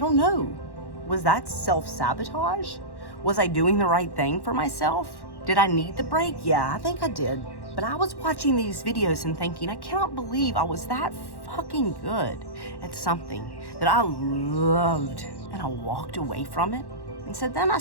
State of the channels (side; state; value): right; late; 1.1 ms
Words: know. Was that self-sabotage? Was I doing the right thing for myself? Did I need the break? Yeah, I think I did. But I was watching these videos and thinking, I cannot believe I was that fucking good at something that I loved, and I walked away from it. And so then I